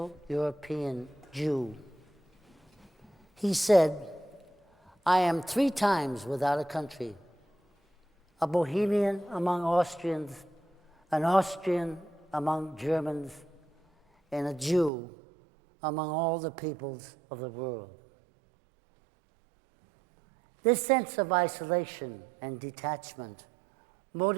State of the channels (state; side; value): drops out; left; at 14.9 s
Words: European Jew. He said, "I am 3 times without a country, a Bohemian among Austrians, an Austrian among Germans, and a Jew among all the peoples of the world." This sense of isolation and detachment